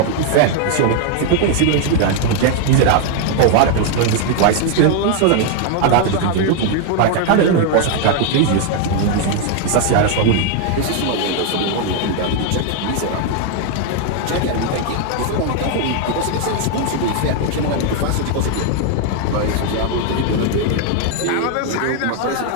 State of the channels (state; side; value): different; both; correlation 0.00